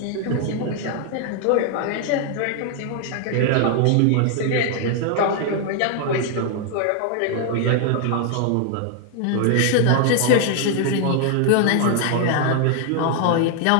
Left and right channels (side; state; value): both; different; correlation 0.00